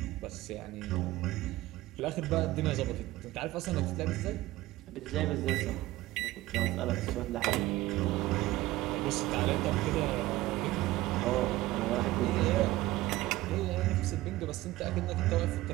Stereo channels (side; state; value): left; quieter; 17.3 dB